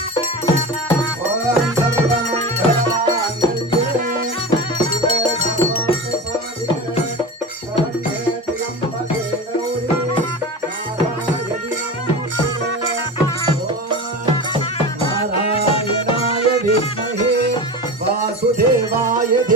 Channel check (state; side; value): normal; both; correlation 0.28